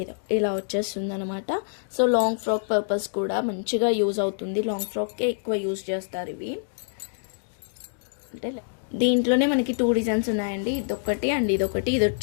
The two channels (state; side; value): silent; right; digital silence